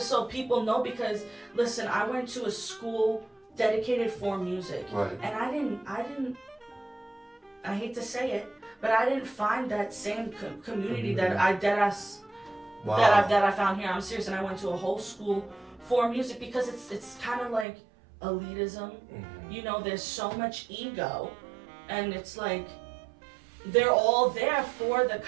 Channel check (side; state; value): left; drops out; at 17.7 s